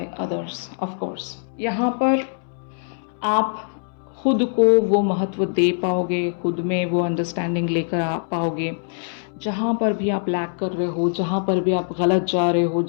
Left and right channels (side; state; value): right; silent; 64 dB below the other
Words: others. Of course यहाँ पर आप खुद को वो महत्व दे पाओगे, खुद में वो अंडरस्टैंडिंग लेकर आ पाओगे। जहाँ पर भी आप लैक कर रहे हो, जहाँ पर भी आप गलत जा रहे हो,